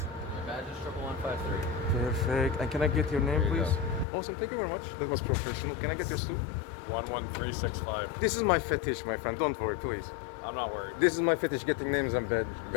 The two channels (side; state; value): right; drops out; at 4.0 s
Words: badge is 11153. Perfect. And can I get your name, There you please? Awesome. Thank you very much. That was professional. Can I get yours too? 11365. This is my fetish, my friend. Don't worry, please. I'm not worried. This is my fetish, getting names and